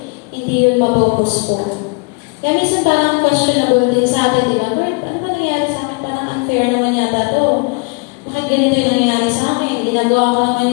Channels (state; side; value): quieter; right; 31.6 dB